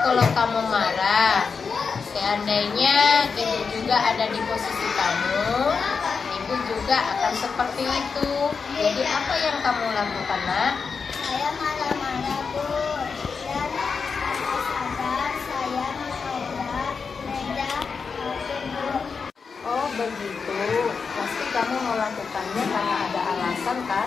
kalau kamu marah. Seandainya ibu juga ada di posisi kamu, ibu juga akan seperti itu. Jadi apa yang kamu lakukan, Nak? Saya marah-marah, Bu, dan saya sadar saya menabrak meja Bu. Oh begitu, pasti kamu melakukannya karena ada alasan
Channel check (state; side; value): quieter; right; 5.4 dB